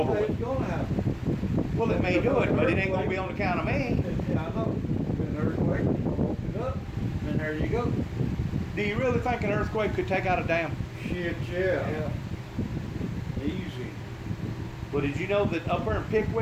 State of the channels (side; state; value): both; identical; correlation 1.00